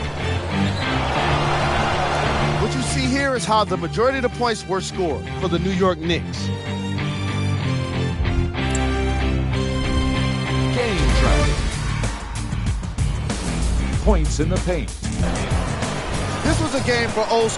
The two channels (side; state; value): both; identical; correlation 1.00